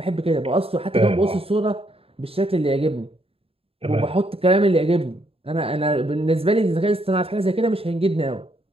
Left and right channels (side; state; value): left; late; 0.28 ms